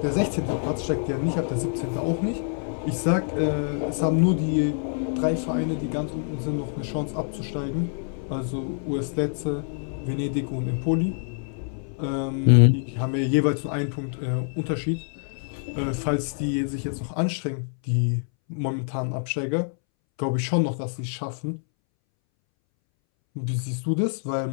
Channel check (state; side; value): silent; right; 61 dB below the other